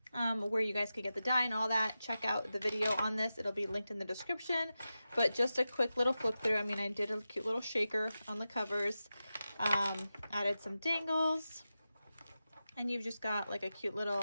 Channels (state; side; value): inverted; both; correlation -0.92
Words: Where you guys could get the die and all that. Check out the video on this. It'll be linked in the description. But just a quick little flip through. I mean, I did a cute little shaker on the covers. Added some dangles. And you've just got like a cute